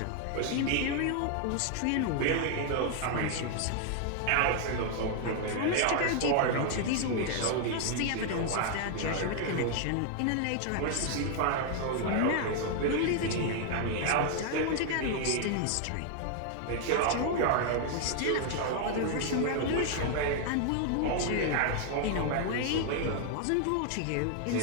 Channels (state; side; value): different; both; correlation 0.00